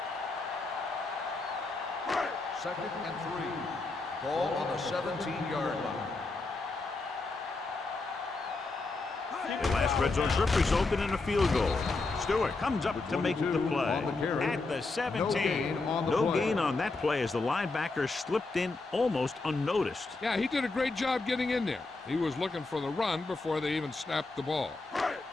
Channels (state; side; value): quieter; right; 3.5 dB